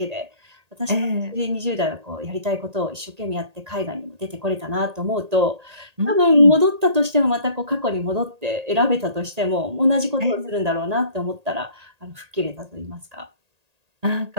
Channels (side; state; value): left; late; 1.8 ms